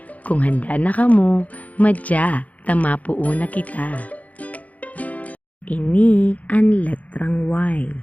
Kung handa na kamo, madya, tamapuo na kita. Ini ang letrang Y.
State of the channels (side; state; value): right; late; 0.072 ms